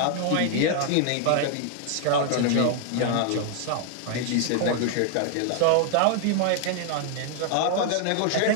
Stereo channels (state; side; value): different; both; correlation 0.00